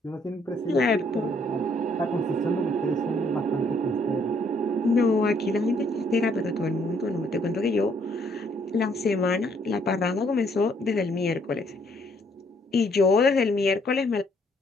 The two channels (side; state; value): both; normal; correlation 0.67